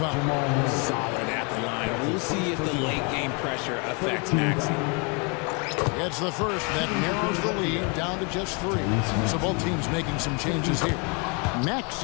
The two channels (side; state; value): right; quieter; 33.2 dB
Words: Solid at the line. We'll see if the late game pressure affects Maxey. It's the first that narrows the lead down to just 3. So both teams making some changes here.